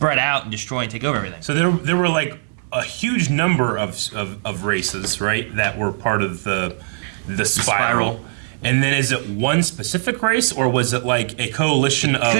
out and destroy and take over everything. So there were like a huge number of races, right, that were part of the spiral. And then is it one specific race, or was it like a coalition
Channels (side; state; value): left; silent; digital silence